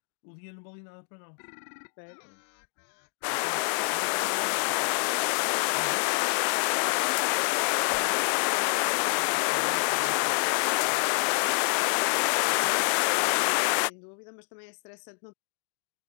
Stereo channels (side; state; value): right; silent; digital silence